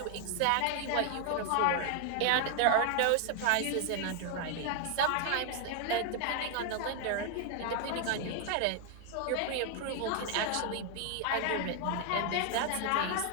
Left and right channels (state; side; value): different; both; correlation 0.00